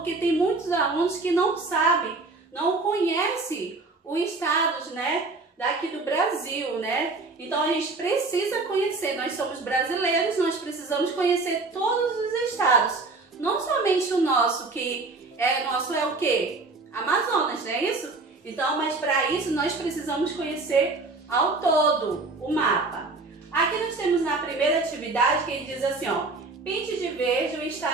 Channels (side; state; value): left; quieter; 3.6 dB